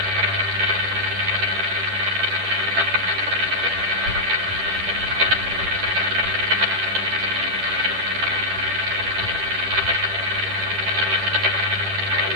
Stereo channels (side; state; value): left; late; 10 ms